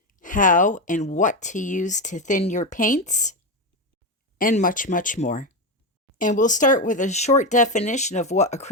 how and what to use to thin your paints, and much, much more. And we'll start with a short definition of what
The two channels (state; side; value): normal; both; correlation 0.13